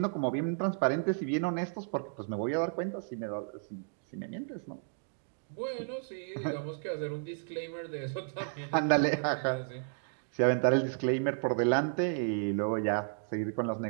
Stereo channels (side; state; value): left; silent; digital silence